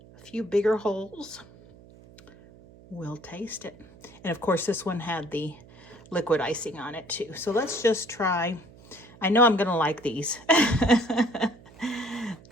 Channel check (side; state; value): right; noise; hum, 23 dB below the sound